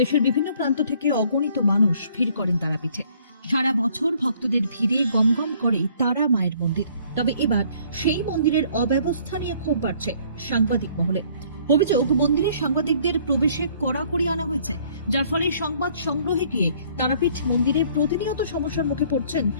বিভিন্ন প্রান্ত থেকে অগণিত মানুষ ভিড় করেন তারাপীঠে। সারা বছর ভক্তদের ভিড়ে গমগম করে তারা মায়ের মন্দির। তবে এবার সেই মন্দিরের অব্যবস্থা নিয়ে ক্ষোভ বাড়ছে সাংবাদিক মহলে। অভিযোগ, মন্দিরে সাংবাদিকদের প্রবেশে কড়াকড়ি আনা হয়েছে, যার ফলে সংবাদ সংগ্রহে গিয়ে তারাপীঠ মন্দিরে প্রতিনিয়ত সমস্যার মুখে পড়ছেন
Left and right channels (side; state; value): both; inverted; correlation -0.60